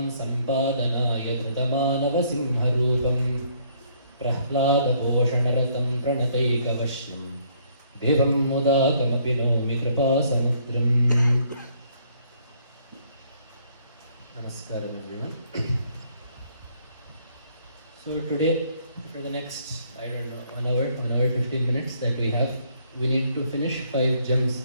सम्पादनाय धृतमानवसिंहरूपं प्रह्लादपोषणरतं प्रणतैकवश्यं देवं मुदाकमपि नौमि कृपासमुद्रम्। Namaskaram everyone. So today, for the next, 1 hour 15 minutes that we have, we need to finish 5 gems.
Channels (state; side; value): inverted; both; correlation -0.66